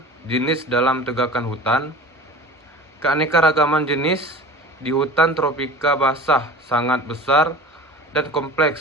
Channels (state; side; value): normal; both; correlation 0.38